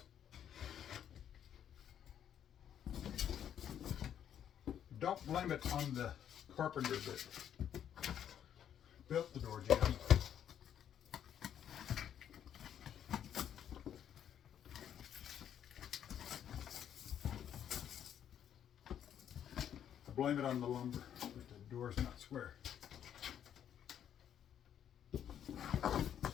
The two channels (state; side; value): quieter; right; 9.6 dB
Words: Don't blame it on the carpenter that built the door jamb. I blame it on the lumber that the door's not square.